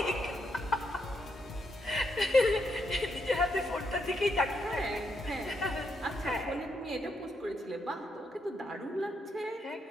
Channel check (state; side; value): normal; both; correlation 0.79